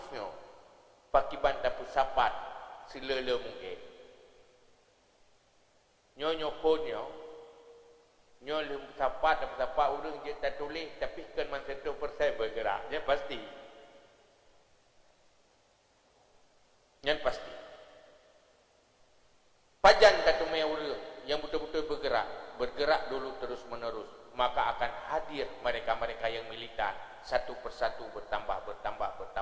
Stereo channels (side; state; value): both; identical; correlation 1.00